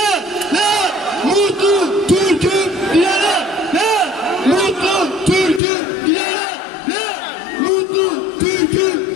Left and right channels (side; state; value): right; drops out; at 5.6 s